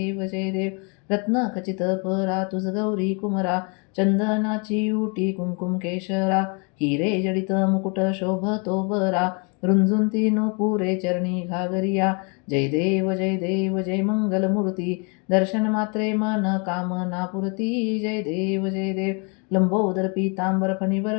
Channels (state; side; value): quieter; right; 34.4 dB